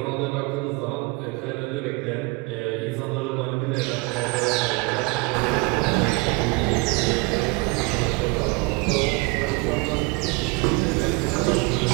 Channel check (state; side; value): quieter; left; 26.6 dB